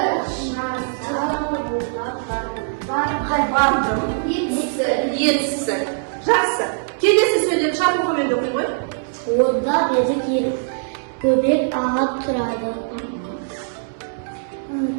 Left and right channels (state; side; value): silent; left; 65 dB below the other